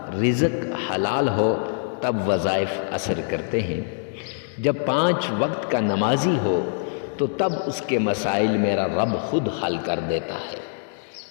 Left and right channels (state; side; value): silent; right; digital silence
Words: رزق حلال ہو تب وظائف اثر کرتے ہیں، جب 5 وقت کا نمازی ہو تو تب اس کے مسائل میرا رب خود حل کر دیتا ہے۔